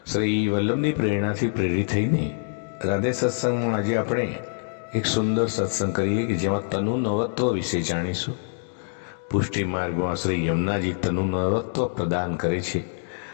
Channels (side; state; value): right; silent; digital silence